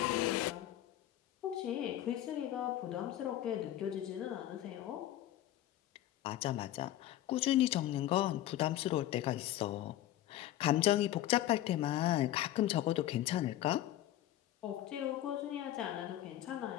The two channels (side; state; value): right; quieter; 13.4 dB